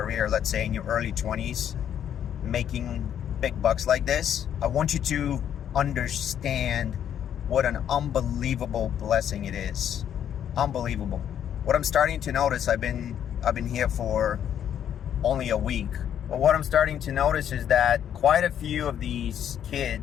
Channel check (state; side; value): quieter; right; 9.6 dB